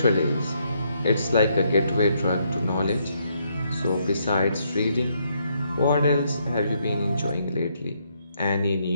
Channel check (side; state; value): both; inverted; correlation -0.75